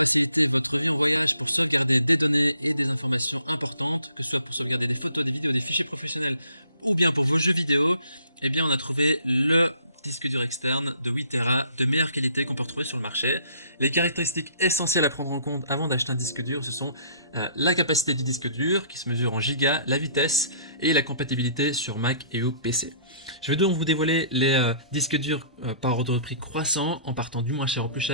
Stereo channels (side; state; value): both; inverted; correlation -0.58